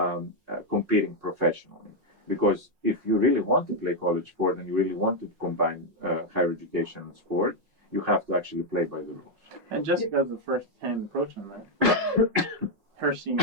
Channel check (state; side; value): late; left; 5.5 ms